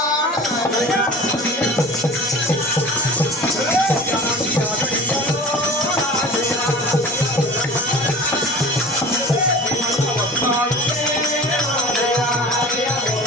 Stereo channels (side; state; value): both; normal; correlation 0.40